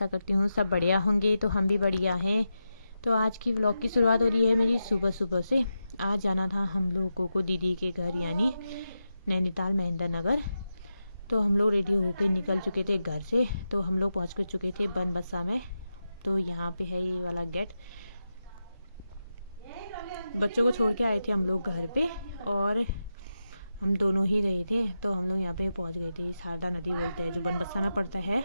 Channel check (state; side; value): inverted; both; correlation -0.89